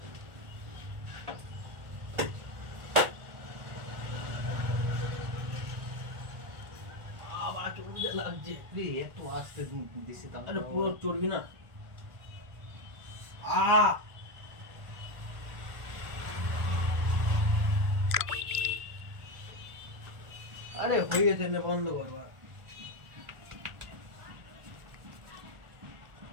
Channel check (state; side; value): late; left; 1.4 ms